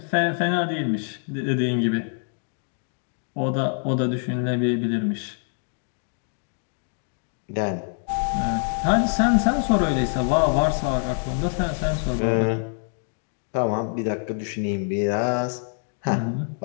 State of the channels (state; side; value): silent; right; 57 dB below the other